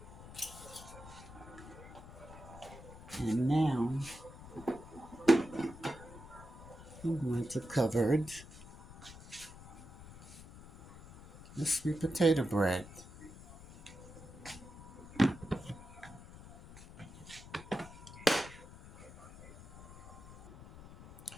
And now I'm going to cover the sweet potato bread.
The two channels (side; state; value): left; noise; rumble, 16 dB below the sound